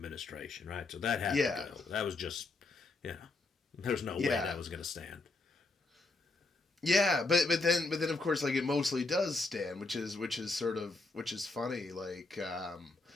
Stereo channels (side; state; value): right; quieter; 3.4 dB